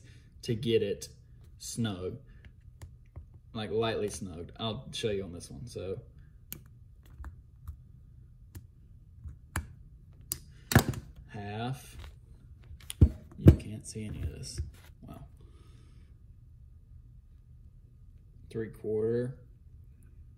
to get it snug, like lightly snugged. I'll show you on this one. So half, you can't see any of this. Wow. 3/4,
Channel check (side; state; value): both; identical; correlation 1.00